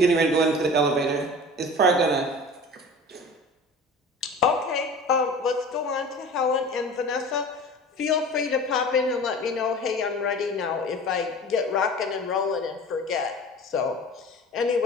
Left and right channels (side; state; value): both; normal; correlation 0.38